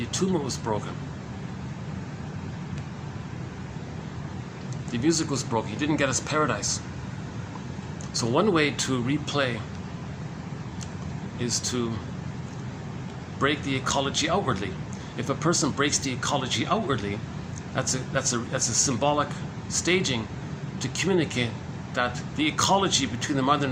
attunement was broken. The music was broken. He didn't get his paradise. So one way to replay is to break the ecology outwardly. If a person breaks the ecology outwardly, that's a symbolic staging to communicate that the ecology between the mother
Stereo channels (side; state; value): both; identical; correlation 1.00